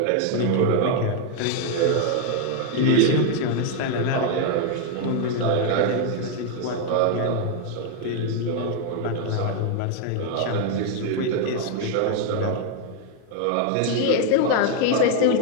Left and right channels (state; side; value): different; both; correlation 0.00